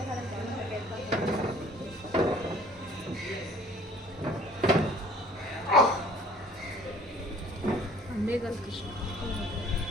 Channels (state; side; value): normal; both; correlation 0.53